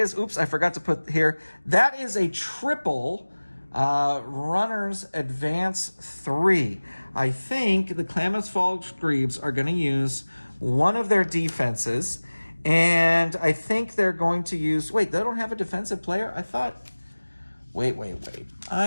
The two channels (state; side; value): inverted; both; correlation -1.00